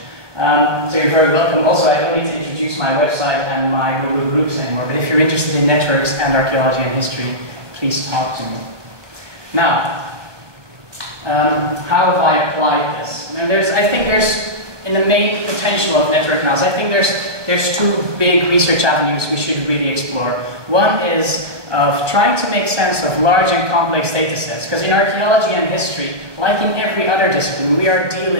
So you're very welcome. Also, I don't need to introduce my website and my Google Groups anymore, but if you're interested in networks and archaeology and history, please talk to me. Now, how have I applied this? And I think there's, in the main potential of network analysis, I think there's two big research avenues we should really explore. One is of trying to make sense of large and complex data sets, because in archaeology and history, like in every other discipline, we are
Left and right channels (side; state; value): left; late; 1.2 ms